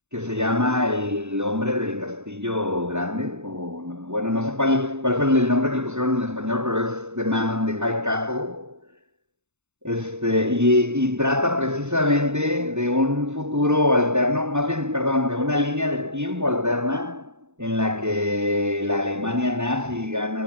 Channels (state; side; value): late; left; 0.82 ms